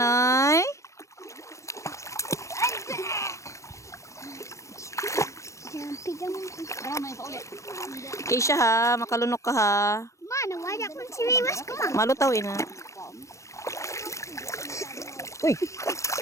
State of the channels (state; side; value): late; right; 0.15 ms